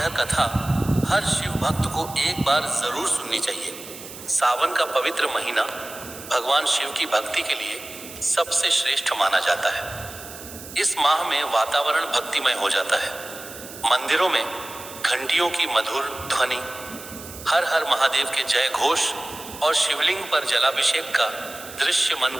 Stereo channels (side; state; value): right; noise; hiss, 14 dB below the sound